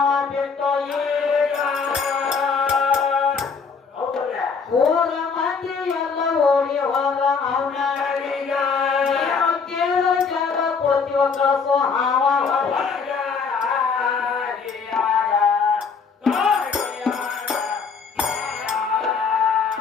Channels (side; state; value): right; quieter; 5.4 dB